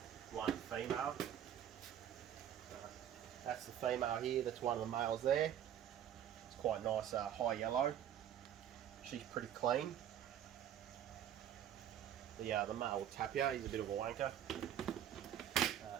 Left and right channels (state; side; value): quieter; left; 10.2 dB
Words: female. That's the female here, that's one of the males there. It's quite nice high yellow. She's pretty clean. The male will tap you, he's a bit of a wanker.